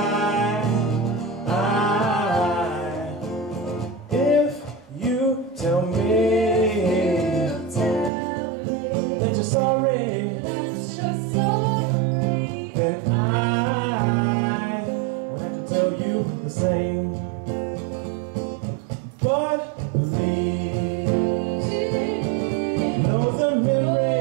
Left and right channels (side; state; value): left; drops out; at 8.1 s